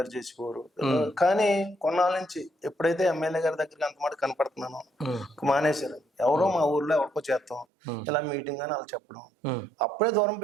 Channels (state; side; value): drops out; left; at 7.7 s